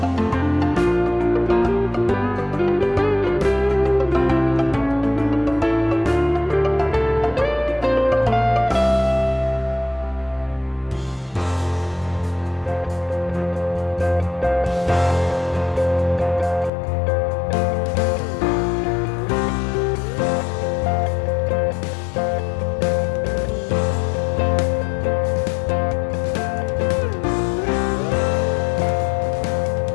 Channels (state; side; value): drops out; right; at 16.7 s